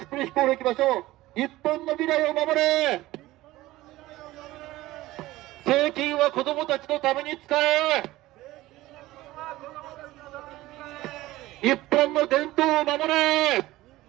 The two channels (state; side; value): quieter; left; 17.4 dB